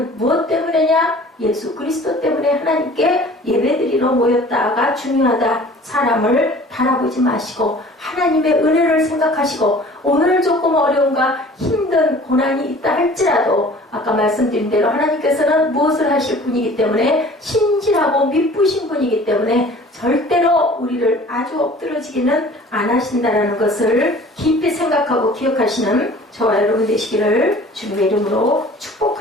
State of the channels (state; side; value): normal; both; correlation 0.47